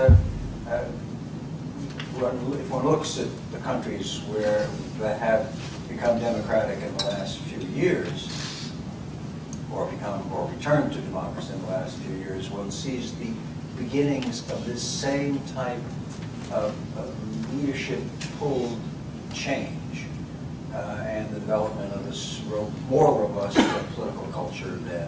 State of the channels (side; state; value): both; identical; correlation 1.00